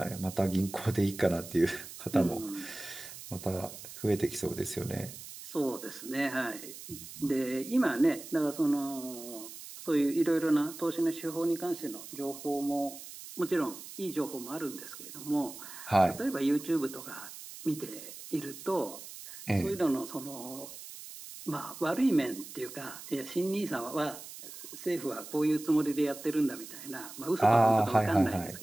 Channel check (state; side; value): noise; right; hiss, 13 dB below the sound